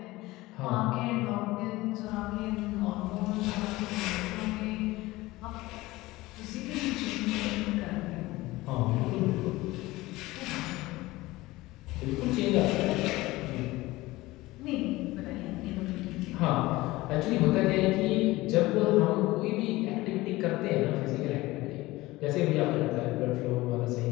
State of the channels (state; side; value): quieter; right; 19.3 dB